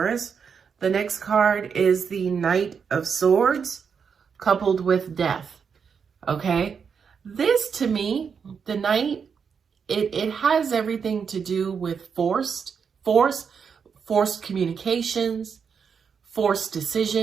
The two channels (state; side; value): quieter; left; 6.4 dB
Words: The next card is the Knight of Swords coupled with Death. Okay, this to me, the Knight, it has everything to do with forced communications, forced